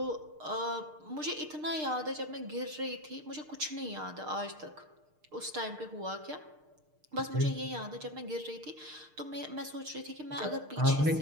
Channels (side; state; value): left; late; 6.6 ms